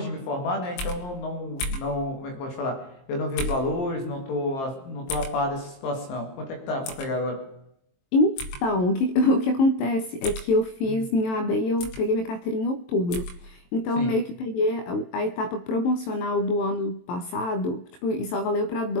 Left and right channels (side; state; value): right; late; 23 ms